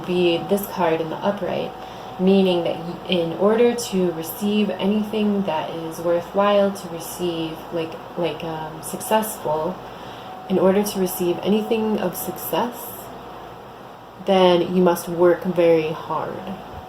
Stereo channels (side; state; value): both; identical; correlation 1.00